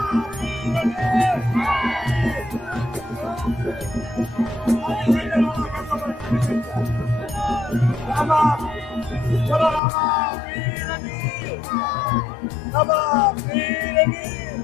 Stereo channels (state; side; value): drops out; right; at 9.8 s